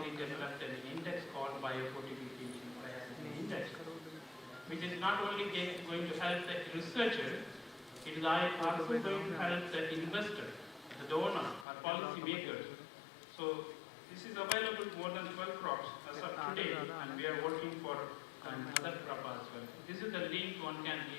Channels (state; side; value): drops out; right; at 11.7 s